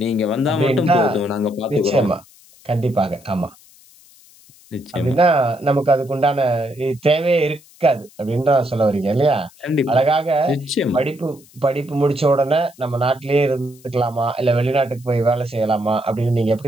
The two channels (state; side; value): noise; left; hiss, 26 dB below the sound